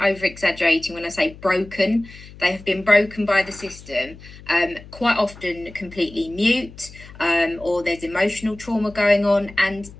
exaggerating when I say broken. They have been broken by the system, quite often completely mute, or there's emotional trauma going on. And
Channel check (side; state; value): left; noise; hum, 19 dB below the sound